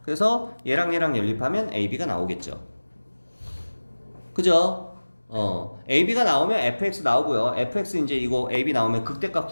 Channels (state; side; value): inverted; both; correlation -1.00